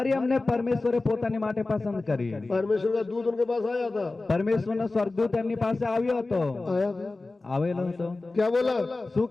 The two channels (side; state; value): right; quieter; 3.3 dB